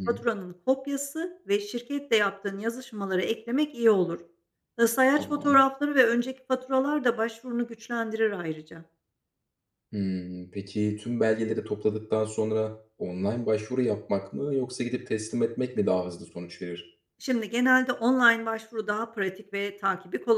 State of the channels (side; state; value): both; identical; correlation 1.00